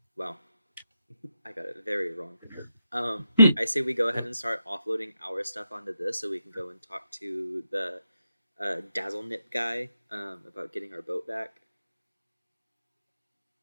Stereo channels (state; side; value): inverted; both; correlation -0.85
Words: Wow, I got it very wrong. I say we go ahead and start offloading our stuff onto this, so we can go and talk to the Dazzle Nip guy about getting our boat back.